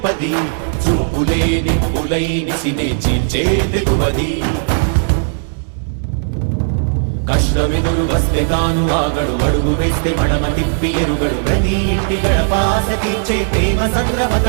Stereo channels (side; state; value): left; silent; digital silence